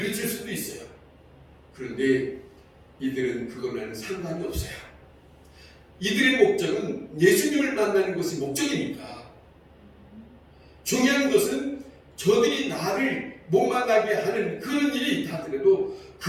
수도 있어요. 그런데 이들은 그거는 상관이 없어요. 이들의 목적은 예수님을 만나는 것이 목적이니까 중요한 것은 저들이 나를 못 만나게 하는 그런 일이 있다 하더라도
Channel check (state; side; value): identical; both; correlation 1.00